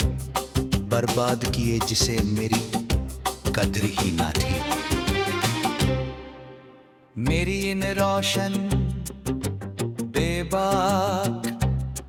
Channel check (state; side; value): identical; both; correlation 1.00